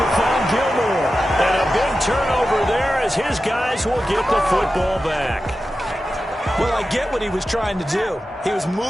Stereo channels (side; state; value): both; normal; correlation 0.93